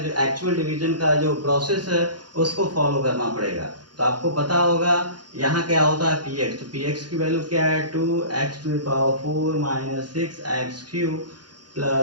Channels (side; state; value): left; late; 0.70 ms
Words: एक्चुअल डिवीजन का जो प्रोसेस है उसको फॉलो करना पड़ेगा। तो आपको पता होगा यहाँ क्या होता है px, तो px की वैल्यू क्या है 2x to the power 4 minus 6x cube